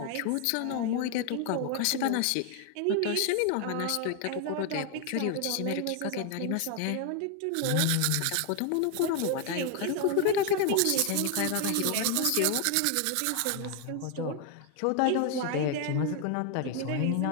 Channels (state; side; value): different; both; correlation 0.00